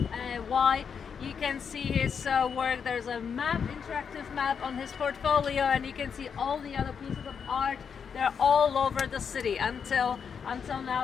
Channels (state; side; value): quieter; right; 6.7 dB